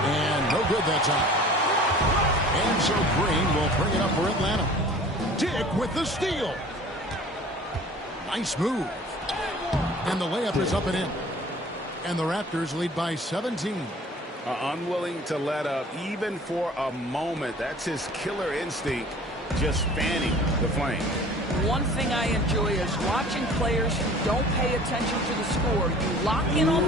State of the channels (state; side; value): normal; both; correlation 0.47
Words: no good that time. And so Green will bring it up for Atlanta. Dick with the steal. Nice move. And the layup is up and in. And the Raptors lead by 17. Unwilling to let up even for a moment. That's his killer instinct, just fanning the flame. One thing I enjoy is watching players who don't pay attention to the score. You lock in on